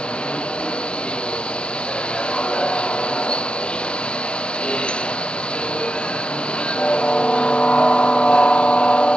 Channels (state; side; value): late; right; 0.056 ms